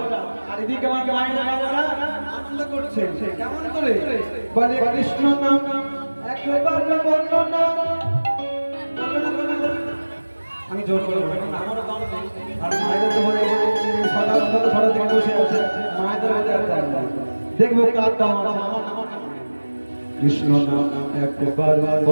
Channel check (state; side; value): inverted; both; correlation -1.00